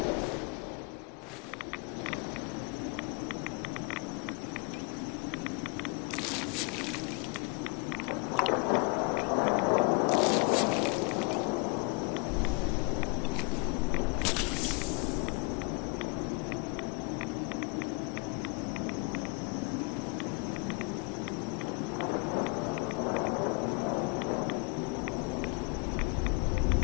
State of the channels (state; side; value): quieter; right; 30.8 dB